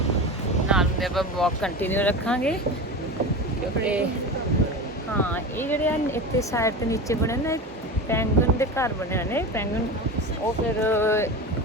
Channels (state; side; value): normal; both; correlation 0.27